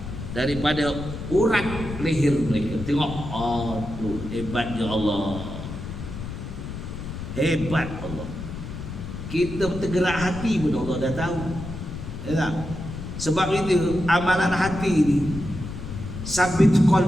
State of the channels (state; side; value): noise; left; rumble, 8 dB below the sound